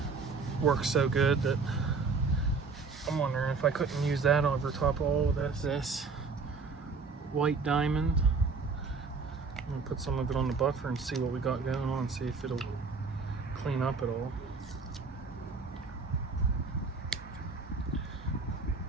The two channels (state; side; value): quieter; left; 4.5 dB